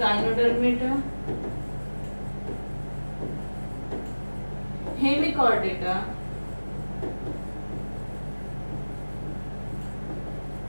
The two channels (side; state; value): both; inverted; correlation -1.00